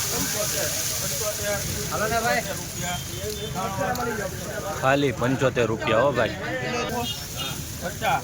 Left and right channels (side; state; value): both; identical; correlation 1.00